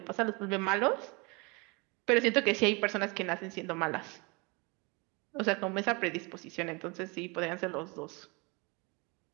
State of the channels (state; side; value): quieter; left; 28.6 dB